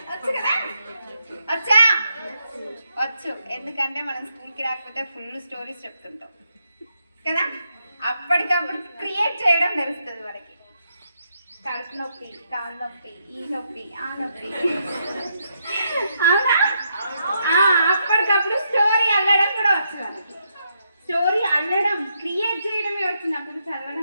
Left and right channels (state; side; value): inverted; both; correlation -0.80